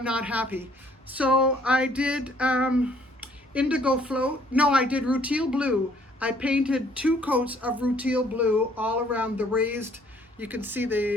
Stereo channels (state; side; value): normal; both; correlation 0.62